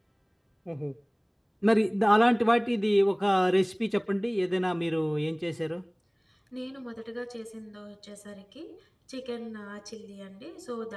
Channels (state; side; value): identical; both; correlation 1.00